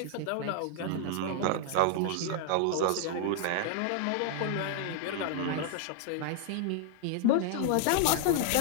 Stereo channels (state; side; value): different; both; correlation -0.01